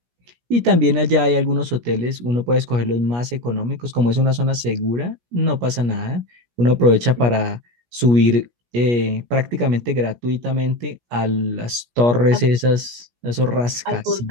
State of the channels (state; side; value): late; left; 17 ms